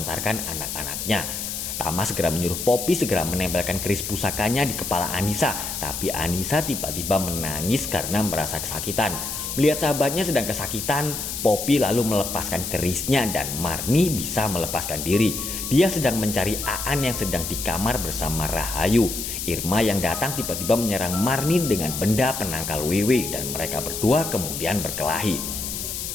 anak-anaknya. Tama segera menyuruh Poppy segera menempelkan keris pusakanya di kepala Anissa, tapi Anissa tiba-tiba menangis karena merasa kesakitan. Melihat sahabatnya sedang kesakitan, Poppy lalu melepaskan kerisnya dan Marni bisa melepaskan diri. Dia sedang mencari Aan yang sedang di kamar bersama Rahayu. Irma yang datang tiba-tiba menyerang Marni dengan benda penangkal Wewe dan mereka berdua kemudian berkelahi.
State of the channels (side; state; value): left; noise; hiss, 5 dB below the sound